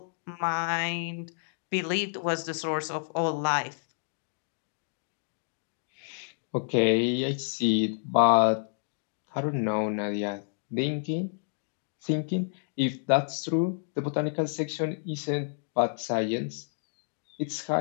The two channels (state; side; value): silent; right; digital silence